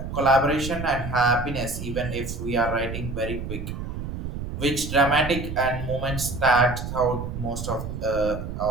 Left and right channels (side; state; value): right; noise; rumble, 6 dB below the sound